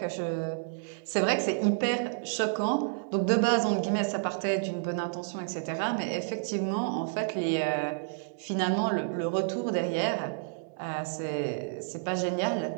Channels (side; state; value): left; silent; digital silence